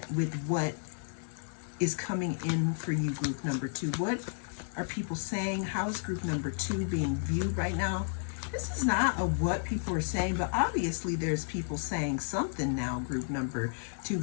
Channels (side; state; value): right; silent; 56 dB below the other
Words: with what is coming in for you, group number 2. What are people saying? How is group number 2 being viewed right now? This is not a what people are saying, but obviously there's people saying something now, group number 2,